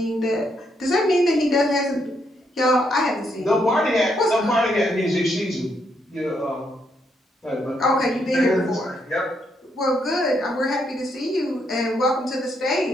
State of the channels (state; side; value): normal; both; correlation 0.76